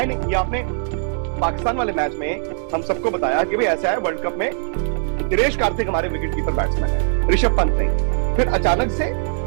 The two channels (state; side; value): silent; left; digital silence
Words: नहीं, ये आपने पाकिस्तान वाले मैच में हम सबको बताया कि भाई ऐसा है, वर्ल्ड कप में दिनेश कार्तिक हमारे विकेट कीपर बैट्समैन है, ऋषभ पंत नहीं। फिर अचानक से